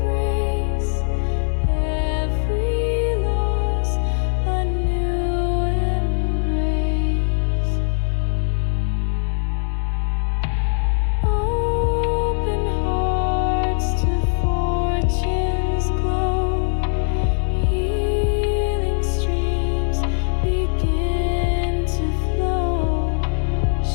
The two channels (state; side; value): silent; right; digital silence